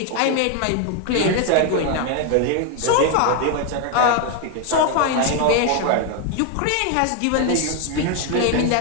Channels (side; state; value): both; different; correlation 0.01